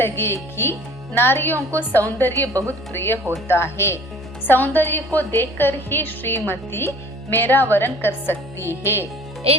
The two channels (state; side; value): normal; both; correlation 0.50